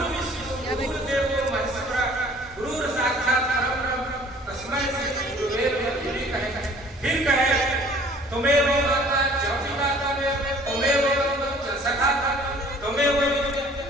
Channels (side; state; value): both; normal; correlation 0.53